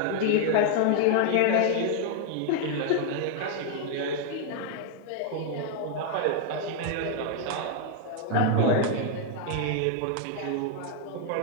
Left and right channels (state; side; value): different; both; correlation 0.00